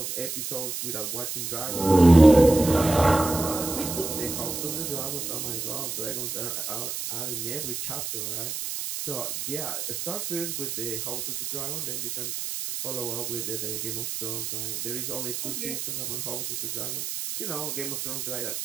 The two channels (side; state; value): right; noise; hiss, 4 dB below the sound